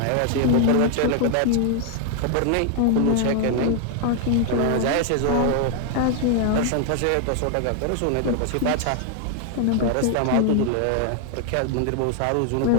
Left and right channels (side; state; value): both; different; correlation 0.00